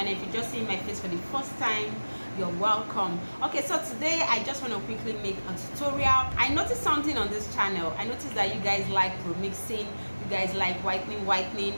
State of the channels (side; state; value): both; inverted; correlation -1.00